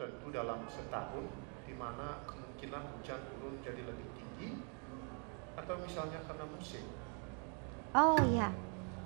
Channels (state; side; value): quieter; left; 38.4 dB